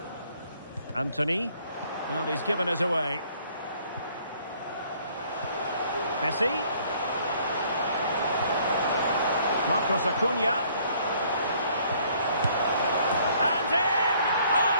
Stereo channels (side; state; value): both; inverted; correlation -0.61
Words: Anthony. Well, he's given us away. Messi. Marcos Acuna. And in! Oh,